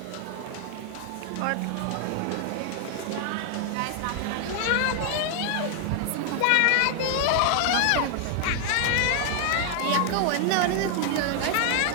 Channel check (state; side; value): different; both; correlation 0.00